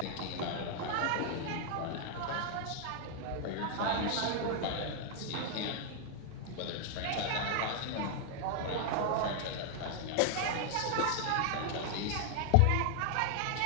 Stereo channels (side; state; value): both; different; correlation 0.00